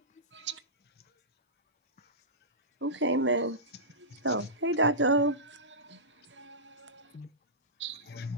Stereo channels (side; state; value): both; normal; correlation -0.18